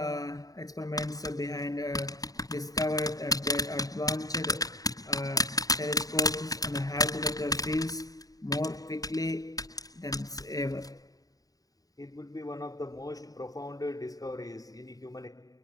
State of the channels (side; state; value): right; late; 0.18 ms